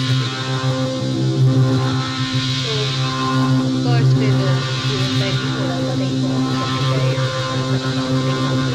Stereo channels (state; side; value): identical; both; correlation 1.00